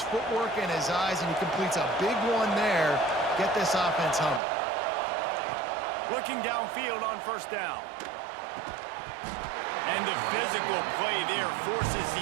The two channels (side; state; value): left; drops out; at 4.4 s